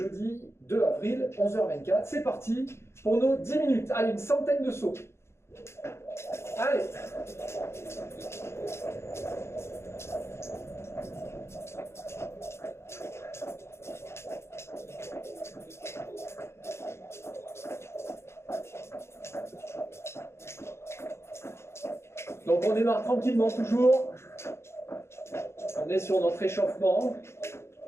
2 avril, 11h24. C'est parti pour nos 10 minutes. Allez, une centaine de sauts. Allez. Donc on démarre tranquillement toujours. On est sur notre échauffement.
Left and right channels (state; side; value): late; right; 0.13 ms